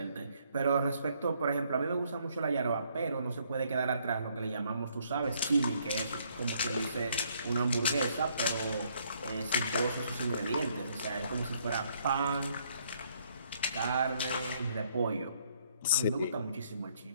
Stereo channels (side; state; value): both; inverted; correlation -0.68